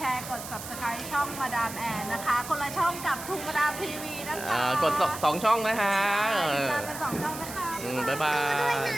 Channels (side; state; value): right; noise; hiss, 11 dB below the sound